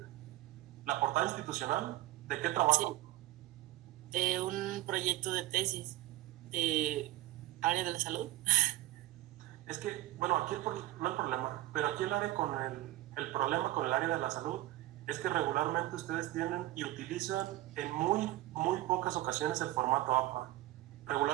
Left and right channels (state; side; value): quieter; left; 16.4 dB